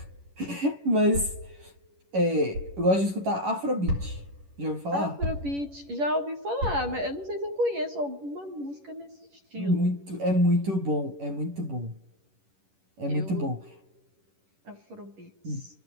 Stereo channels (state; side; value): late; left; 11 ms